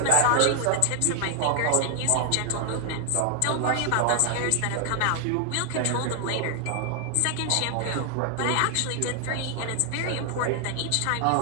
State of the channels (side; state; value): both; different; correlation 0.00